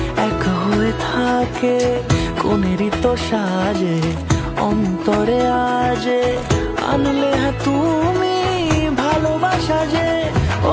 এক হয়ে থাকে। কোনেরই তো সাজে অন্তরে আজে আনলে তুমি ভালোবাসা যে।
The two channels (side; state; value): both; identical; correlation 1.00